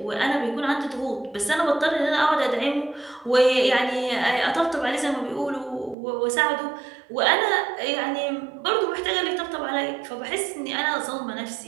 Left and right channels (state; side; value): drops out; left; at 6.0 s